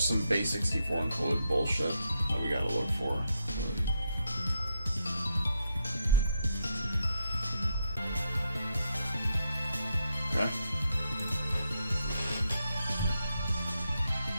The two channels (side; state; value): both; inverted; correlation -0.79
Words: some base 64 encoded bullshit that we gotta look for. Okay.